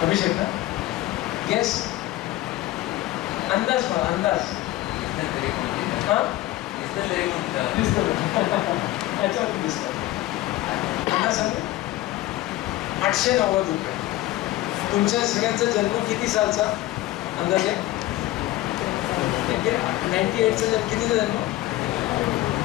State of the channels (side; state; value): right; quieter; 16.5 dB